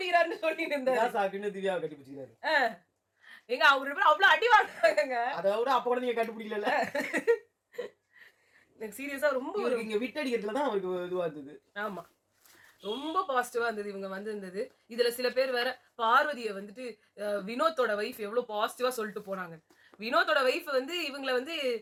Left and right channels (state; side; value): identical; both; correlation 1.00